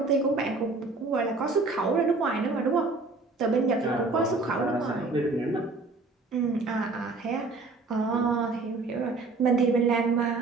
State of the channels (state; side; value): quieter; left; 3.7 dB